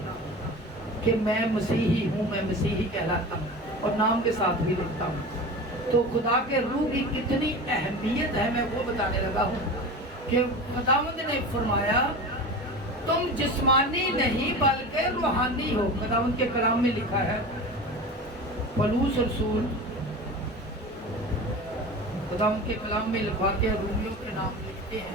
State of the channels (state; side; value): normal; both; correlation 0.31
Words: کہ میں مسیحی ہوں، میں مسیحی کہلاتا ہوں، اور نام کے ساتھ بھی لکھتا ہوں. تو خدا کے روح کی کتنی اہمیت ہے میں وہ بتانے لگا ہوں کہ خداوند نے فرمایا تم جسمانی نہیں بلکہ روحانی ہو. خداوند کے کلام میں لکھا ہے، پولس رسول خداوند کے کلام میں لکھواتے ہیں، رومیوں کے نام لکھتے